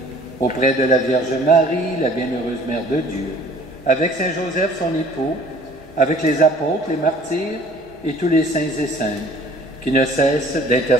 auprès de la Vierge Marie, la bienheureuse Mère de Dieu, avec Saint Joseph, son époux, avec les apôtres, les martyrs et tous les saints et saintes, qui ne cessent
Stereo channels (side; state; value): both; normal; correlation 0.52